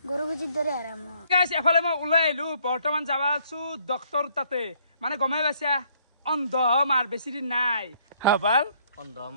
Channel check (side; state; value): both; inverted; correlation -0.66